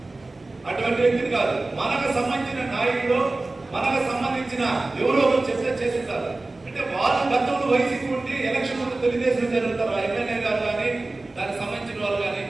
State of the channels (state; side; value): quieter; left; 3.1 dB